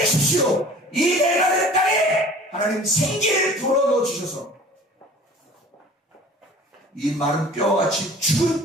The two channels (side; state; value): both; normal; correlation 0.46